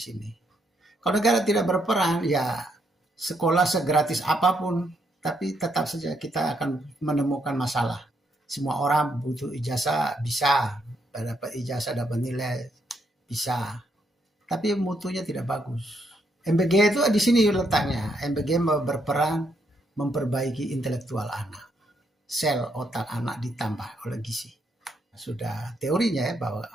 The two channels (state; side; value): normal; both; correlation 0.75